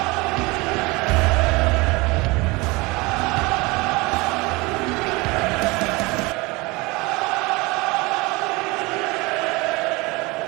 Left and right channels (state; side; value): quieter; left; 24.4 dB